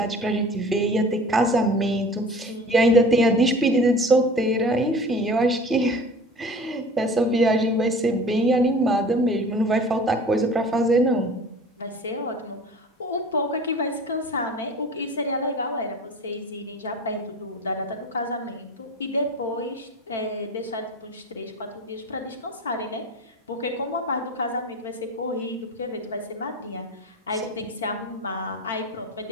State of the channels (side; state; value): both; normal; correlation 0.41